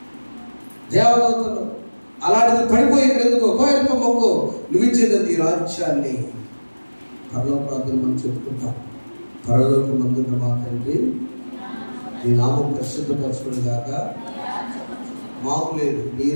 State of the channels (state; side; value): inverted; both; correlation -1.00